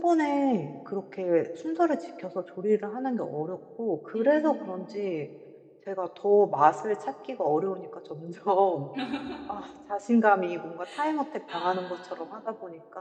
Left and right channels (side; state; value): both; identical; correlation 1.00